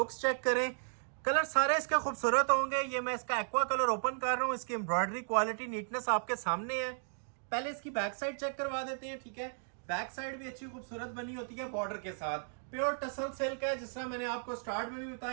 चेक करें। कलर सारे इसके खूबसूरत होंगे। ये मैं इसका एक्वा कलर ओपन कर रहा हूँ। इसकी एम्ब्रॉयडरी क्वालिटी, नीटनेस आपके सामने है। पहले इसकी बैक साइड चेक करवा देते हैं। ठीक है, बैक साइड भी अच्छी खूबसूरत बनी होती है बॉर्डर के साथ। प्योर टसल सिल्क है, जिस तरह मैंने आपको स्टार्ट में भी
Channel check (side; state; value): left; silent; digital silence